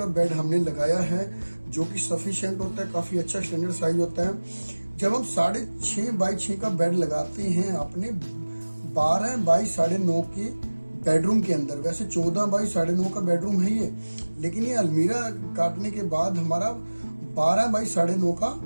बेड हमने लगाया है, जो कि सफिशिएंट होता है, काफ़ी अच्छा स्टैंडर्ड साइज होता है। जब हम 6.5 बाई 6 का बेड लगाते हैं अपने 12 बाई 9.5 के बेडरूम के अंदर, वैसे 14 बाई 9.5 का बेडरूम है ये, लेकिन ये अलमीरा काटने के बाद हमारा 12 बाई 9.5 का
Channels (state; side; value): inverted; both; correlation -1.00